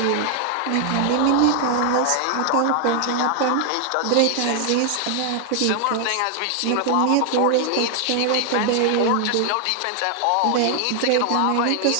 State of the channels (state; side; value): different; both; correlation 0.00